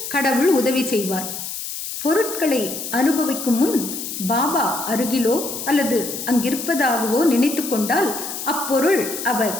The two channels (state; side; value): noise; left; hiss, 7 dB below the sound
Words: கடவுள் உதவி செய்வார். பொருட்களை அனுபவிக்கும் முன் பாபா அருகிலோ அல்லது அங்கிருப்பதாகவோ நினைத்து கொண்டால் அப்பொருள் அவர்